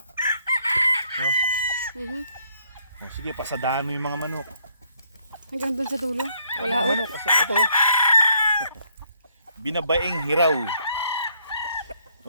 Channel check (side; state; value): both; inverted; correlation -0.70